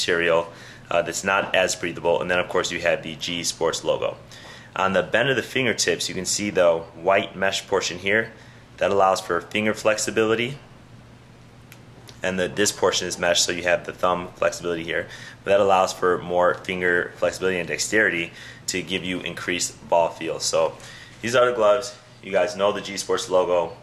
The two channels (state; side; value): identical; both; correlation 1.00